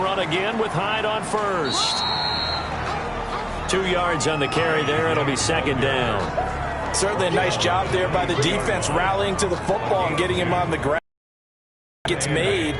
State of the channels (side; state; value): both; identical; correlation 1.00